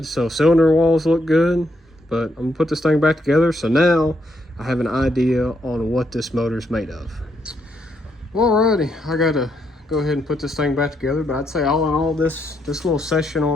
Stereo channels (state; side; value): normal; both; correlation 0.77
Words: So cylinder walls look good. But I'm gonna put this thing back together, so now I have an idea on what this motor's made of. Alrighty, I gotta go ahead and put this thing back together, but I'd say all in all, this little session